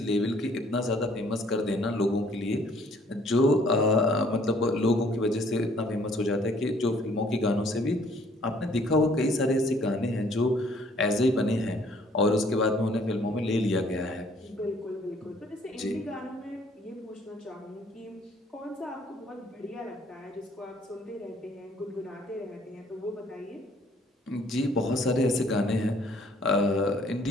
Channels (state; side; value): normal; both; correlation 0.60